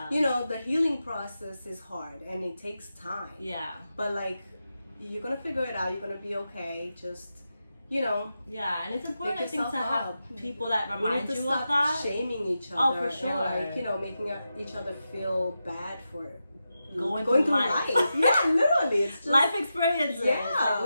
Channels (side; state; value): both; inverted; correlation -0.89